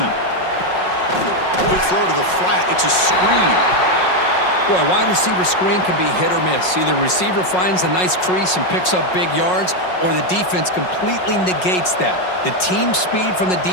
Quick throw to the flat. It's a screen. Boy, wide receiver screen can be hit or miss. Either receiver finds a nice crease and picks up big yards, or the defense completely negates that. The team speed from the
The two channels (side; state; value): right; late; 5.5 ms